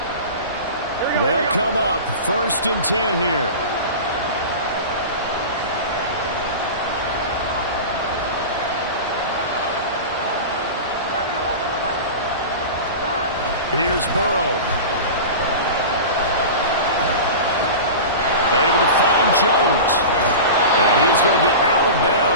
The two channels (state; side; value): inverted; both; correlation -0.30